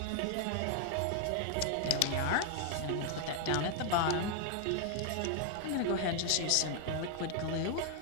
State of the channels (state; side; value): different; both; correlation 0.00